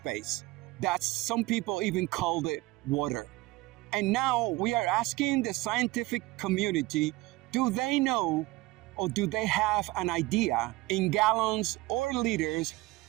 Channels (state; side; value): quieter; left; 19.9 dB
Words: That some people even called it water. And now we are asking the scientific community, do they know or do they have an idea in gallons or liters